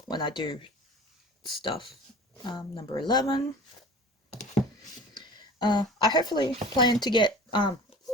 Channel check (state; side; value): normal; both; correlation 0.41